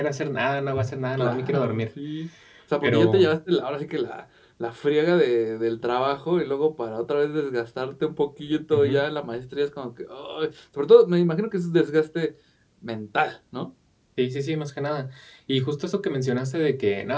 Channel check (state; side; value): identical; both; correlation 1.00